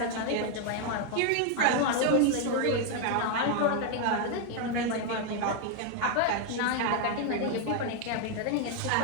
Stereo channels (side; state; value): both; different; correlation 0.01